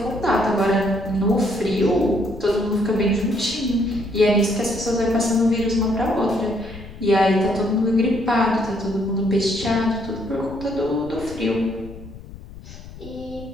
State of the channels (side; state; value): left; noise; rumble, 16 dB below the sound